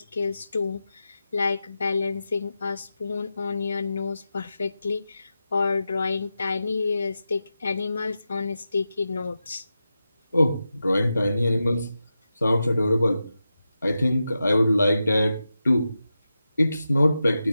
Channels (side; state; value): both; inverted; correlation -0.91